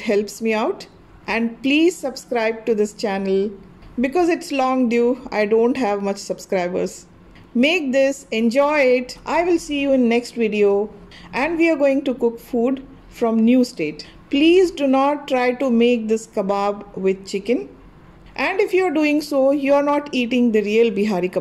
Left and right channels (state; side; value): identical; both; correlation 1.00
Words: helps me out. And please subscribe to this channel because it's long due. I don't have much subscribers. Make this, enjoy it. I will see you in next video, and we are going to cook food from new state. Please do not try to make this kebab with chicken. And if you are doing so, you are not eating the real Bihari